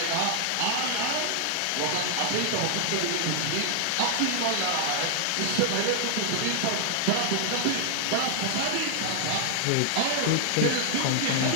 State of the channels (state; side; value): different; both; correlation 0.00